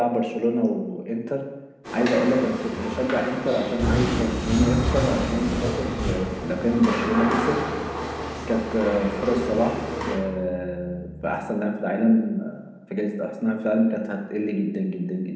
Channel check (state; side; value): identical; both; correlation 1.00